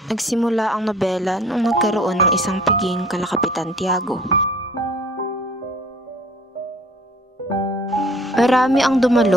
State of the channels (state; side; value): normal; both; correlation 0.51